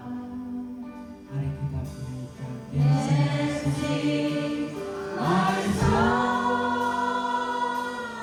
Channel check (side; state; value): both; identical; correlation 1.00